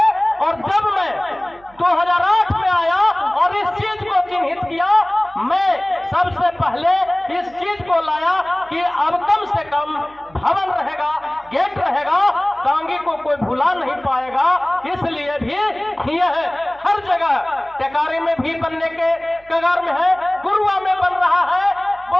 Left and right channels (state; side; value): noise; right; hum, 27 dB below the sound